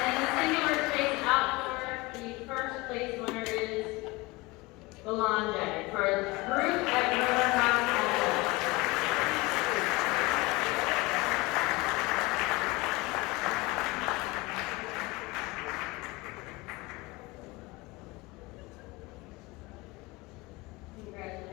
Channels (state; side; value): quieter; right; 22.8 dB